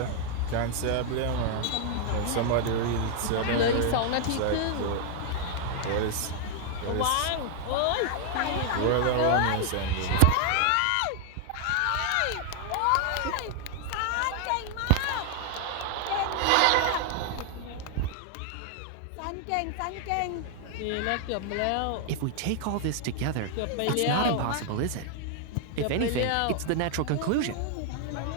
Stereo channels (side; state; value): both; different; correlation 0.00